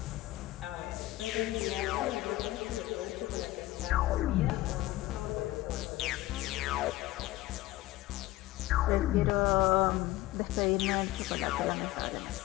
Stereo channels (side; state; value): right; quieter; 17.1 dB